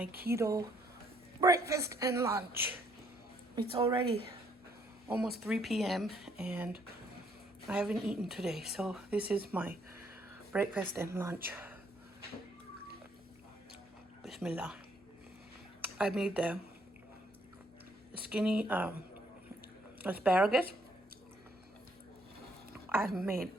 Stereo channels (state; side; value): normal; both; correlation 0.68